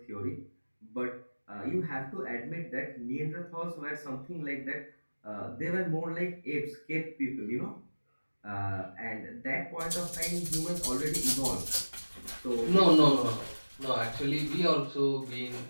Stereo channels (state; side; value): inverted; both; correlation -1.00